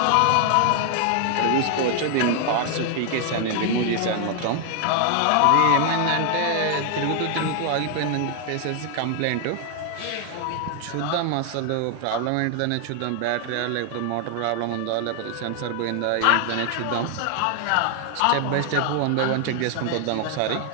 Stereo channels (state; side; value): different; both; correlation 0.00